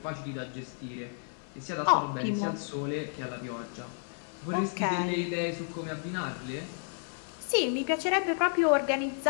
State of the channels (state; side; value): silent; right; 57 dB below the other